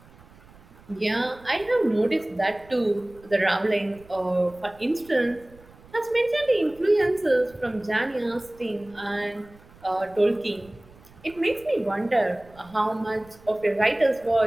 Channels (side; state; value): right; noise; rumble, 24 dB below the sound